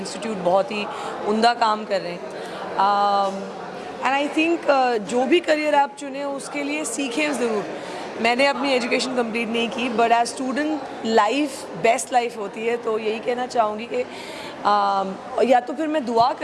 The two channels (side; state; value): both; identical; correlation 1.00